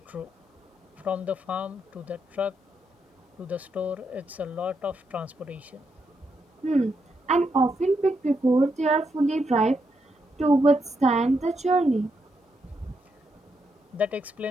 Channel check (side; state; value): both; normal; correlation 0.81